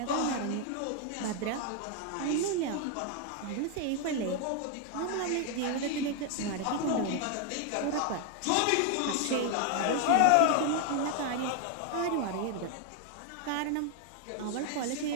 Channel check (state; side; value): different; both; correlation 0.00